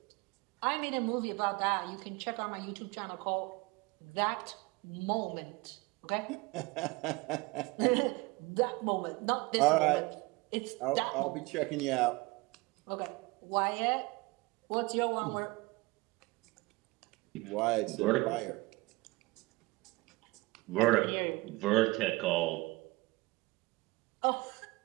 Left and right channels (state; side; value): quieter; left; 23.3 dB